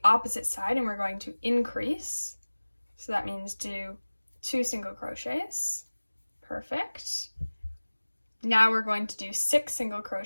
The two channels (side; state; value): both; inverted; correlation -1.00